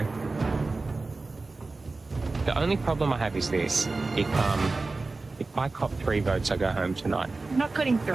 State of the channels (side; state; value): left; quieter; 3.6 dB